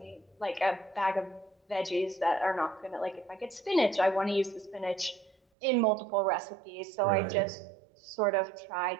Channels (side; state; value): left; drops out; at 5.4 s